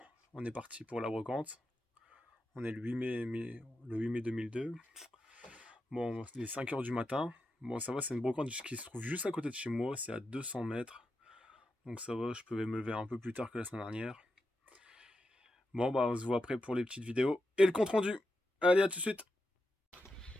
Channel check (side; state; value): both; normal; correlation 0.88